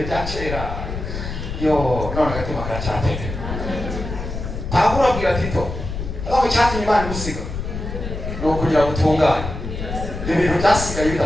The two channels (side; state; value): left; noise; rumble, 6 dB below the sound